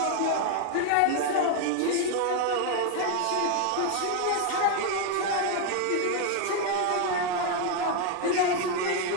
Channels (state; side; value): different; both; correlation 0.01